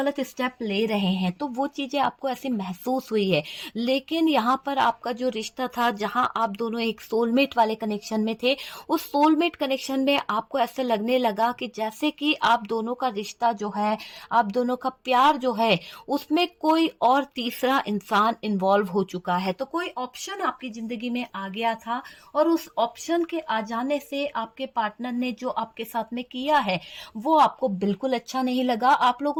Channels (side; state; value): both; identical; correlation 1.00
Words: स्टेप ले रहे हैं, तो वो चीजें आपको ऐसी महसूस हुई है। लेकिन यहाँ पर आपका जो रिश्ता था, जहां आप दोनों एक सोलमेट वाले कनेक्शन में थे, उस सोलमेट कनेक्शन में आपको ऐसे लगने लगा कि जैसे कि आप दोनों का रिश्ता जो है, आप दोनों का प्यार जो है, उसमें कोई और तीसरा इंसान इन्वॉल्व हो चुका है। तो कोई ऑप्शन आपकी जिंदगी में आ गया था, और उस ऑप्शन के आ जाने से आपके पार्टनर ने जो आपके साथ में किया है वो आपको बिल्कुल अच्छा नहीं लगा। आप